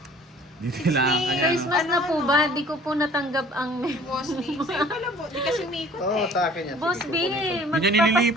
Di kailangan ka yan. Christmas na po ba? Di ko po natanggap ang... Boss B. Sa'yo pala, di kasi umiikot Oo, eh. sa akin yan. Boss Sige, B, kukunin ko. Hindi niya magpapasko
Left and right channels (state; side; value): normal; both; correlation 0.51